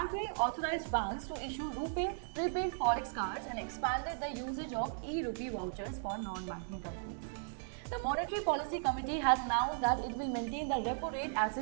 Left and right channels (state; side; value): silent; left; digital silence